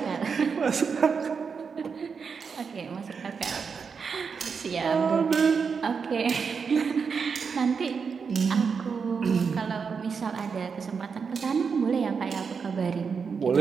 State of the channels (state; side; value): quieter; left; 5.8 dB